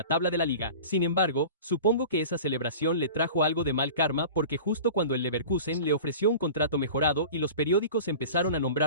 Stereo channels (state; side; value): inverted; both; correlation -0.38